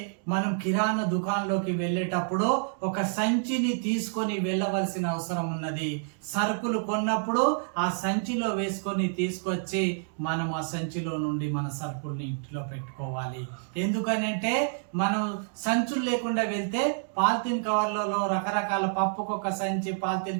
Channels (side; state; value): left; silent; digital silence